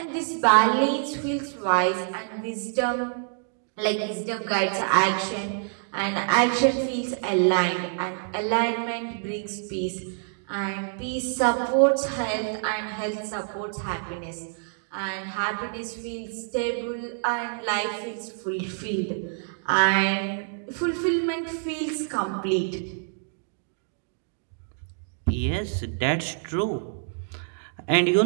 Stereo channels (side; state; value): left; silent; digital silence